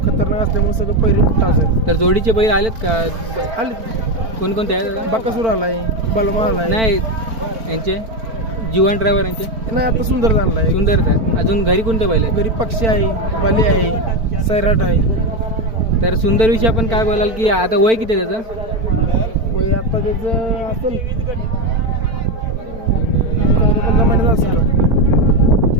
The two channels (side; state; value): left; late; 4.5 ms